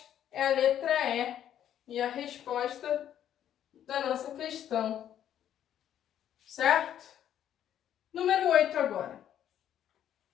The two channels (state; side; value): quieter; right; 10.5 dB